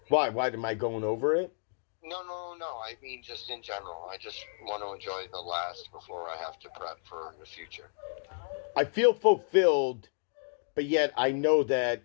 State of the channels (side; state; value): right; silent; digital silence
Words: Why? Why am I going over it? No. I mean, just in general. I just want to enjoy the last before I have to prep for the future. I feel fulfilled, but yet I know that